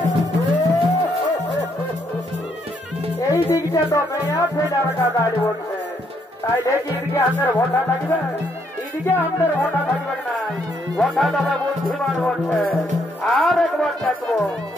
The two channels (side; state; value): both; normal; correlation 0.73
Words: এই দিকটা তো মেয়া ফেডার দাঁড়িয়ে বলছে, তাই দেখি এদিকে আমাদের ভোটা থাকবে, এদিকে আমাদের ভোটা থাকবে না। ভোটা তবে বুদ্ধিমান বলছে। আর একবার দেখবো